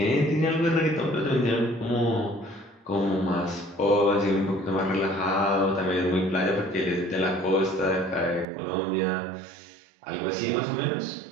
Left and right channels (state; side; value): drops out; left; at 8.5 s